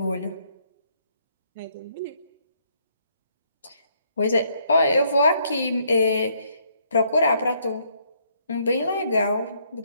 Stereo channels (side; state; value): both; inverted; correlation -0.70